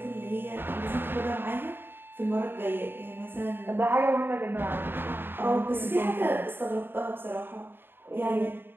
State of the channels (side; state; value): left; late; 0.10 ms